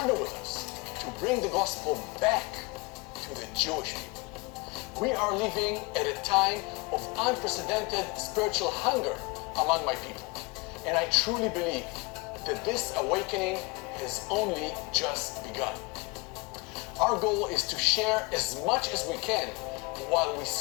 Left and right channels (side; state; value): right; quieter; 25.7 dB